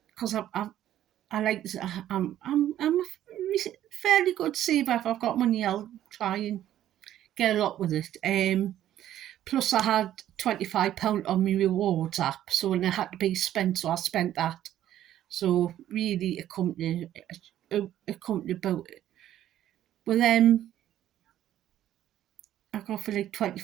Because I like this. I'm a fairly good saver. If I've got money, I'll try and get a lot with it. Plus, I had £25 on my rewards app, so when it had to be spent, so I spent that. So really, a company about it. Well, I got for like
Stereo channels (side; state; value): left; quieter; 12.1 dB